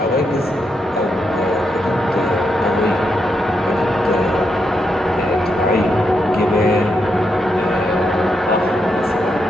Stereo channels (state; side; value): normal; both; correlation 0.82